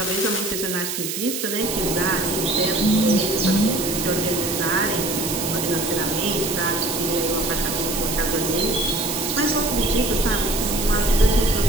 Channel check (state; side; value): noise; right; hiss, 4 dB below the sound